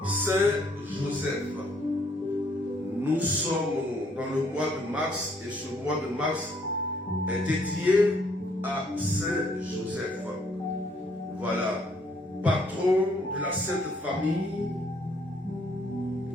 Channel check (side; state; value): both; normal; correlation 0.67